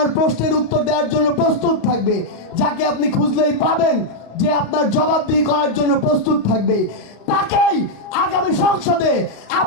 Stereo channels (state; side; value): late; right; 35 ms